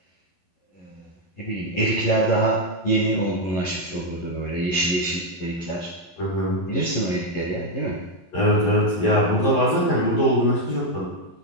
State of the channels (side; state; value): right; late; 11 ms